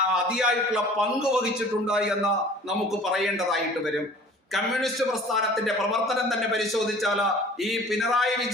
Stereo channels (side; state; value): both; normal; correlation 0.47